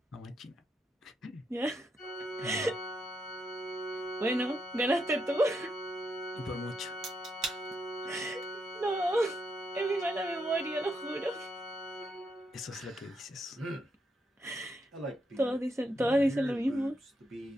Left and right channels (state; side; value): normal; both; correlation 0.81